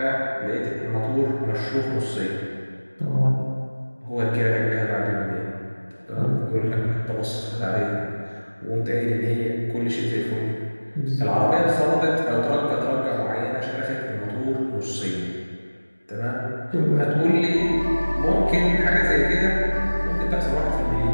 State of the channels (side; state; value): both; inverted; correlation -1.00